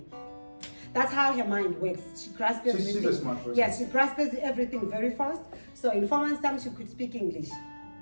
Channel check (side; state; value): both; inverted; correlation -1.00